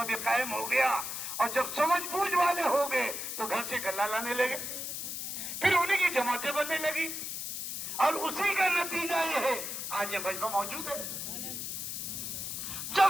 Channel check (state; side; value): noise; left; hiss, 5 dB below the sound